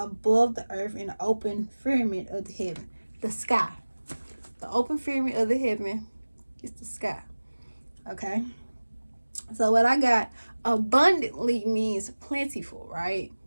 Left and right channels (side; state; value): both; inverted; correlation -1.00